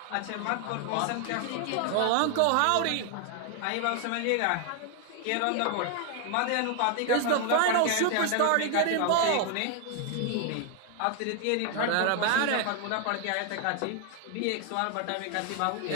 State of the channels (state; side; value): different; both; correlation 0.01